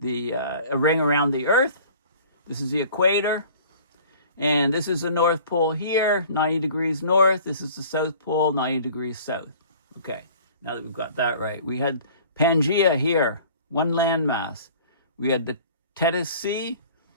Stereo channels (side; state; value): both; inverted; correlation -0.48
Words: ring around the Earth. This is the equator. And this is the North Pole here, 90 degrees north. This is the South Pole, 90 degrees south. Okay, now that we've got that right. We had Pangea here, one landmass. We had the Tethys Sea,